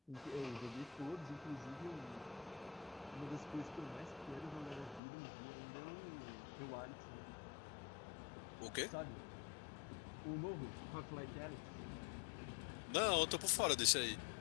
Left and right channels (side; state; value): right; drops out; at 5.0 s